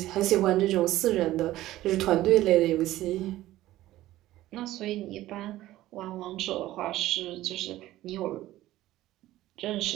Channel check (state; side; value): quieter; left; 15.4 dB